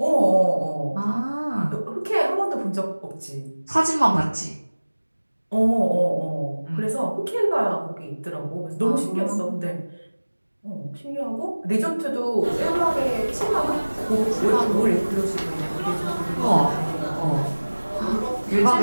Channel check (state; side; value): inverted; both; correlation -1.00